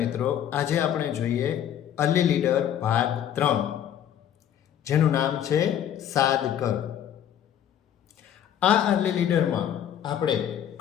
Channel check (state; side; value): quieter; right; 10.1 dB